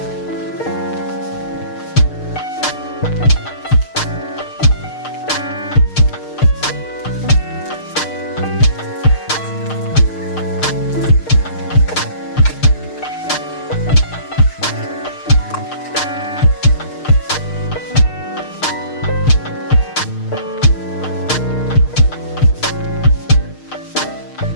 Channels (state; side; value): late; right; 6.5 ms